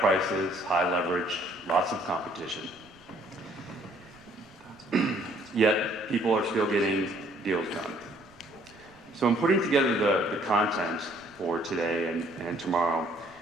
high leverage, lots of competition. Yet people are still getting deals done. So in putting together the content for today and tomorrow,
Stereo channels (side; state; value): right; noise; rumble, 28 dB below the sound